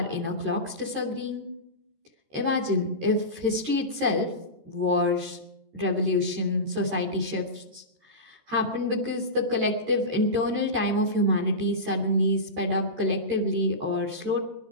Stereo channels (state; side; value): late; left; 13 ms